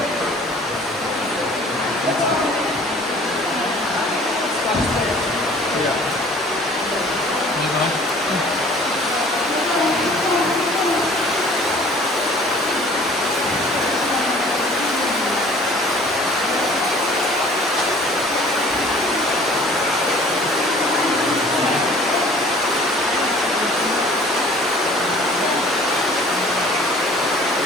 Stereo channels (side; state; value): right; noise; rumble, 29 dB below the sound